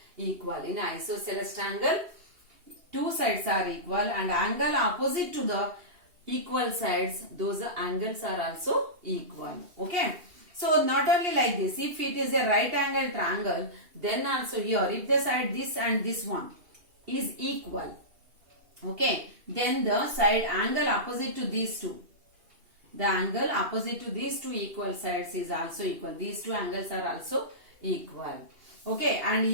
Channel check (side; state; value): left; late; 2.8 ms